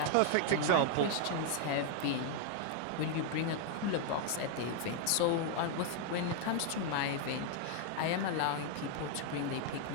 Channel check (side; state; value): both; different; correlation 0.00